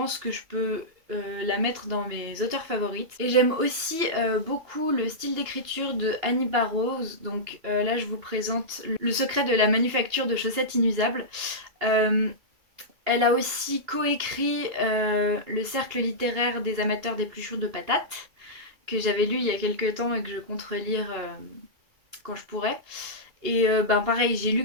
que je peux la mettre dans mes auteurs favorites. Et j'aime aussi beaucoup le style d'écriture de Annie Barrows. Donc là je vous présente Le secret de la manufacture de chaussettes inusables. Elle a aussi coécrit Le cercle littéraire des amateurs d'épluchures de patates, que j'avais lu il y a quelques temps et que je compte relire quand je pourrai. Et pareil, j'ai lu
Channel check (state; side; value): late; left; 2.8 ms